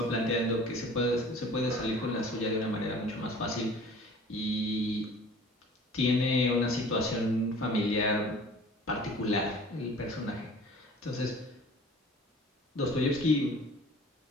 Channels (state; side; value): normal; both; correlation 0.46